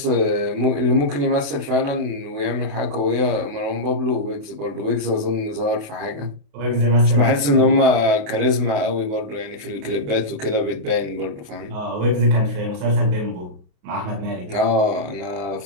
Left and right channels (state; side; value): late; left; 28 ms